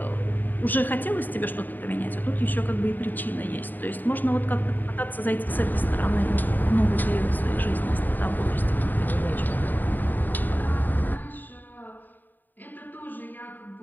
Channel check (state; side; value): late; right; 0.088 ms